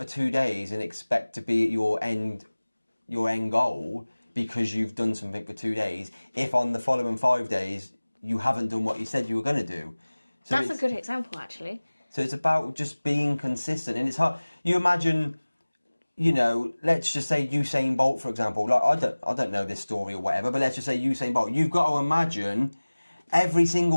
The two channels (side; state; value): both; inverted; correlation -1.00